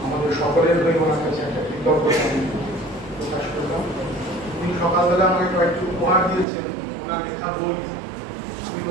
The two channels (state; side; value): drops out; left; at 6.5 s